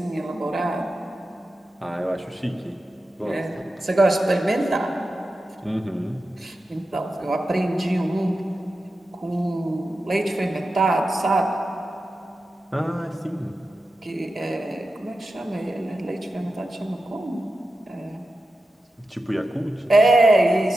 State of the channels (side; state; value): both; normal; correlation 0.91